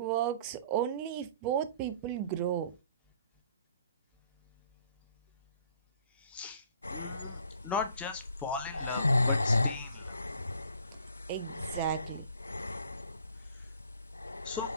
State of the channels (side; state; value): both; inverted; correlation -0.56